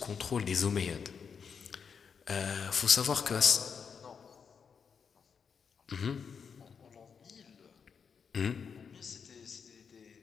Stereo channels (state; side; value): quieter; right; 6.4 dB